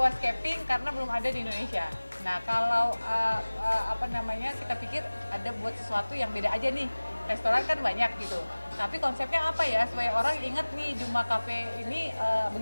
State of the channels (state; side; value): inverted; both; correlation -1.00